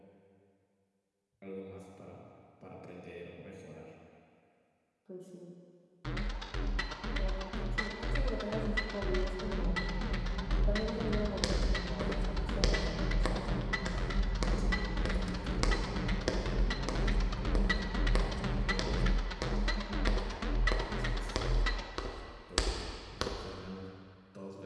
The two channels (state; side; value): identical; both; correlation 1.00